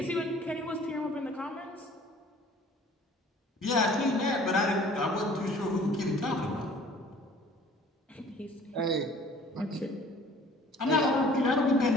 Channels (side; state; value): both; normal; correlation 0.51